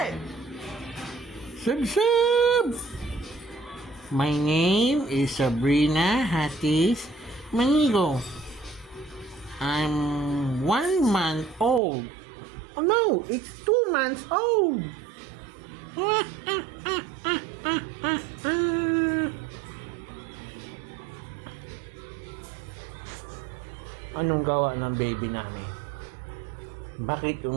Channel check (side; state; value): left; drops out; at 11.8 s